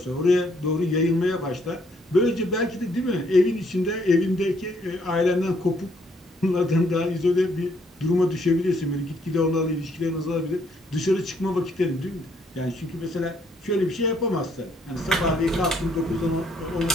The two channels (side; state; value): both; normal; correlation 0.68